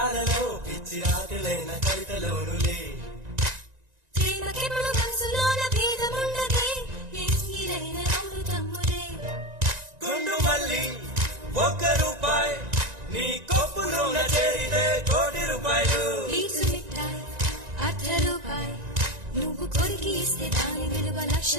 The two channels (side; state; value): left; late; 1.9 ms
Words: పాటలలో పిచ్చి రాత్రులైన కవితలోనులే ప్రేమకెప్పుడు మనసులోన భేదముండదే ఎంగిలైన అమృతములే గుండు మల్లి ₹1 నీ కొప్పులోన చేరితే ₹1,00,00,000 పీచు మిఠాయి ₹1 నువ్వు కొరికి ఇస్తే దాని విలువ